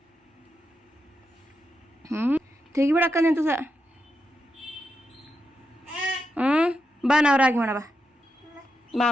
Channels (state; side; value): normal; both; correlation 0.86